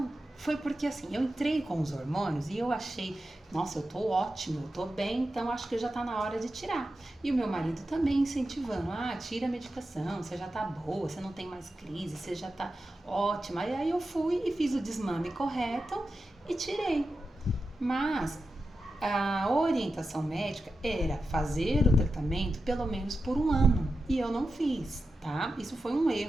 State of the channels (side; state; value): both; normal; correlation 0.91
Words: foi porque assim, eu entrei com os hormônios e eu achei, nossa, eu tô ótimo, eu tô bem, então acho que já tá na hora de tirar. E o meu marido também incentivando, tira a medicação, você já tá boa, você não tem mais crise, você já tá ótima. E aí eu fui e fiz o desmame correto e tirei. Mas a orientação médica era fazer o tratamento pelo menos por 1 ano. E eu não fiz, tá? Isso foi um